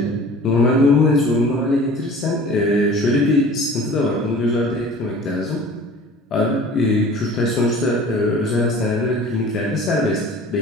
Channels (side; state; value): both; normal; correlation 0.44